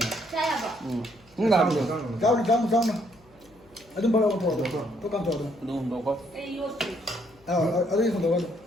ꯆꯥꯌꯥꯕ ꯆꯥꯎꯅ ꯑꯗꯨꯝ ꯕꯔꯥ ꯄꯣꯔꯛꯑꯣ ꯇꯣ ꯀꯥꯝ ꯇꯧꯔꯣ ꯑꯗꯨ ꯍꯨꯟꯗꯣꯛꯀꯣ ꯑꯩ ꯌꯣꯠꯇ꯭ꯔꯤ ꯑꯗꯨꯒꯤ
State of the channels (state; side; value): noise; left; hum, 30 dB below the sound